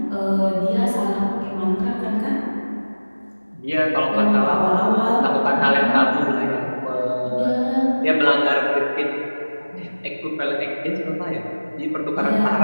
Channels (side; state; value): both; inverted; correlation -1.00